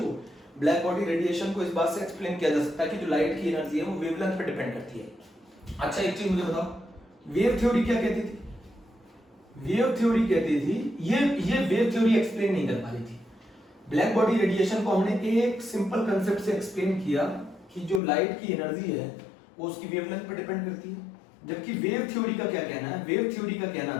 ब्लैक बॉडी रेडिएशन को इस बात से एक्सप्लेन किया जा सकता है कि जो लाइट की एनर्जी है वो वेवलेंथ पर डिपेंड करती है। अच्छा एक चीज मुझे बताओ, वेव थ्योरी क्या कहती थी? वेव थ्योरी कहती थी ये वेव थ्योरी एक्सप्लेन नहीं कर पा रही थी। ब्लैक बॉडी रेडिएशन को हमने एक सिंपल कंसेप्ट से एक्सप्लेन किया कि जो लाइट की एनर्जी है वो उसकी वेवलेंथ पर डिपेंड करती है। जबकि वेव थ्योरी का क्या कहना है? वेव थ्योरी का कहना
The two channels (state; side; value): drops out; right; at 18.0 s